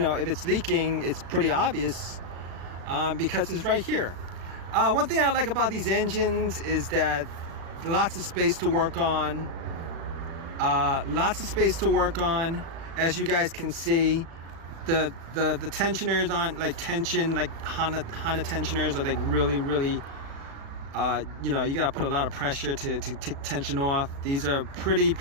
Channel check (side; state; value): left; late; 36 ms